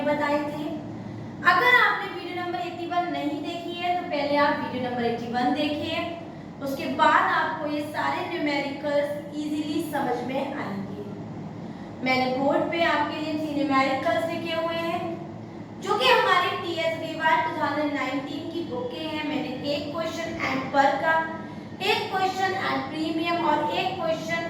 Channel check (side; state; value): both; identical; correlation 1.00